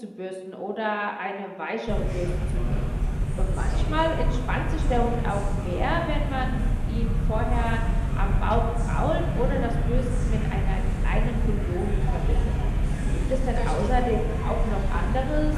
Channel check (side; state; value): both; identical; correlation 1.00